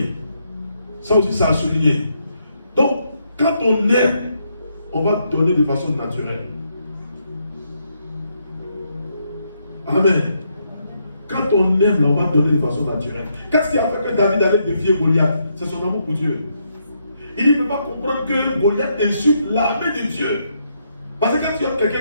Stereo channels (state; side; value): inverted; both; correlation -0.77